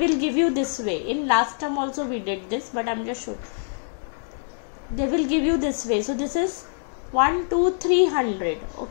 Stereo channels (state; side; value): silent; right; digital silence